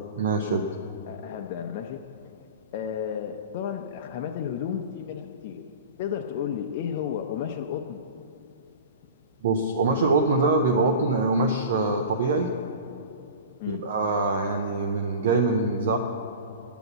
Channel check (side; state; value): both; inverted; correlation -0.34